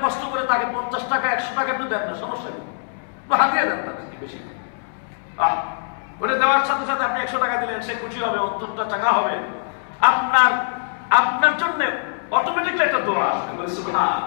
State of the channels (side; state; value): right; silent; 64 dB below the other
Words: কষ্ট করে তাকে 50 টাকা 100 টাকা একটু দেন না, সমস্যা নেই, হাতিয়ে দেন তাকে বেশি। ওটা দেওয়ার সাথে সাথে আপনি 100 টাকা দিলেন, সে খুশি হবে, 70 টাকা হবে, আপনার জন্য অটোমেটিকলি একটা দোয়া আসবে।